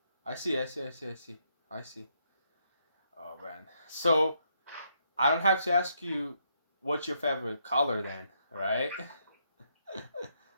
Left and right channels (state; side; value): inverted; both; correlation -0.75